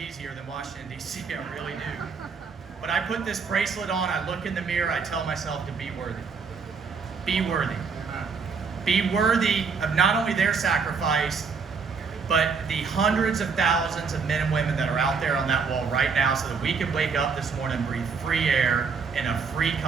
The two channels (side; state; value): left; quieter; 5.3 dB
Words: than Washington, D.C. I really do. But I put this bracelet on, I look in the mirror, I tell myself to be worthy. Be worthy. Be worthy of not only their sacrifice, but the hundreds of thousands of men and women that are out there on that wall right now so that we can wake up this morning and breathe free air in a free